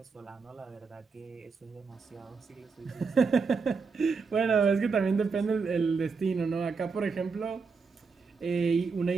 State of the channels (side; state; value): left; quieter; 4.9 dB